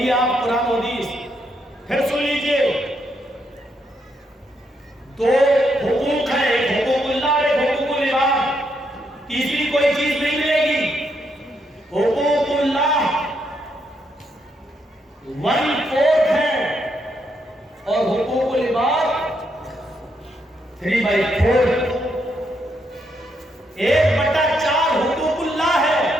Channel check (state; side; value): normal; both; correlation 0.78